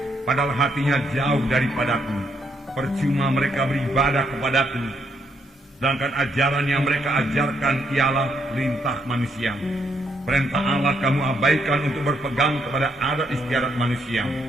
padahal hatinya jauh daripadaku. Percuma mereka beribadah kepadaku, sedangkan ajaran yang mereka ajarkan ialah perintah manusia. Perintah Allah kamu abaikan untuk berpegang kepada adat istiadat manusia."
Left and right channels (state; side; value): normal; both; correlation 0.74